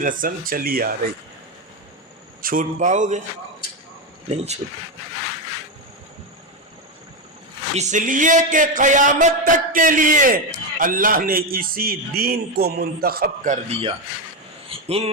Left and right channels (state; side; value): normal; both; correlation 0.10